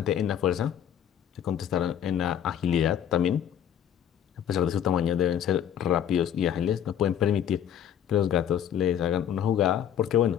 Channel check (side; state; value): right; quieter; 9.7 dB